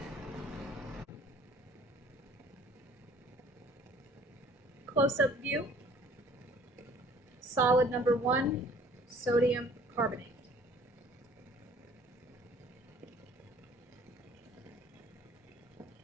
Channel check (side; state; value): both; normal; correlation 0.54